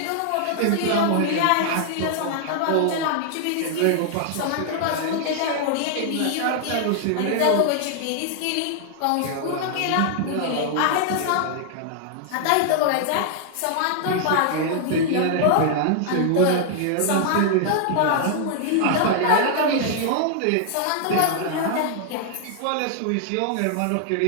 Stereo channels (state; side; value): different; both; correlation -0.01